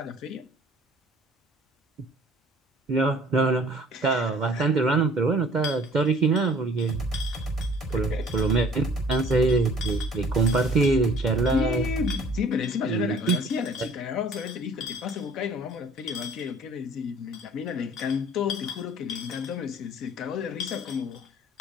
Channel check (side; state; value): both; normal; correlation 0.52